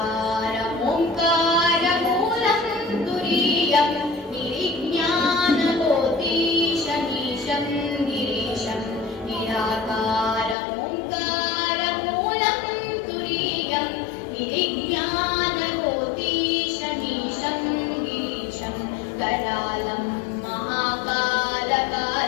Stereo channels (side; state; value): right; drops out; at 10.6 s